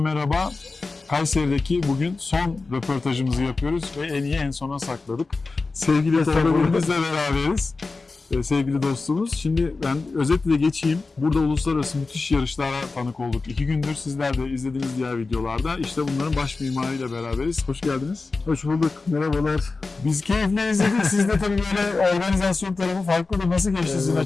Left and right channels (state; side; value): quieter; right; 3.8 dB